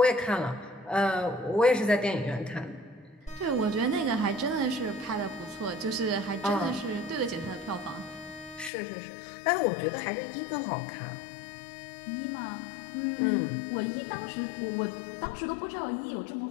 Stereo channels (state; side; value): drops out; right; at 8.7 s